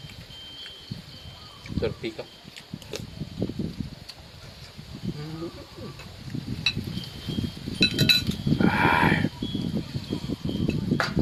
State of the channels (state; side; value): identical; both; correlation 1.00